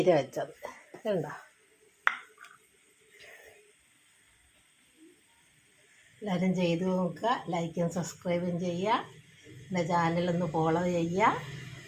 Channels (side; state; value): both; identical; correlation 1.00